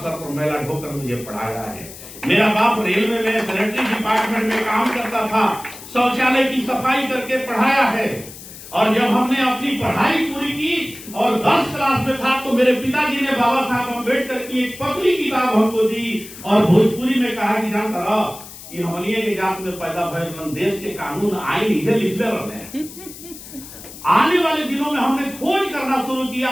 पर मैला ढोकर मुझे पढ़ाया है। मेरा बाप रेलवे में सैनिटरी डिपार्टमेंट में काम करता था, शौचालय की सफाई करके पढ़ाया है। और जब हमने अपनी पढ़ाई पूरी की और 10 क्लास में था तो मेरे पिताजी ने बाबा साहब अम्बेडकर की एक पतली किताब हमको दी और भोजपुरी में कहा कि जानता रहो कि हमनिए के जात में पैदा भयल देश के कानून आइन इसे लिखते रहे। आने वाले दिनों में हमने खोज करना शुरू किया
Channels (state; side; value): noise; left; hiss, 15 dB below the sound